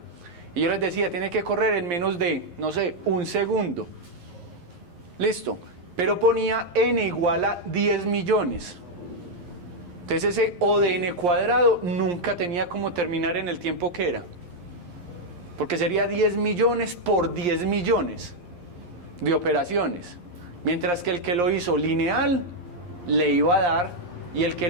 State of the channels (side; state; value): left; late; 11 ms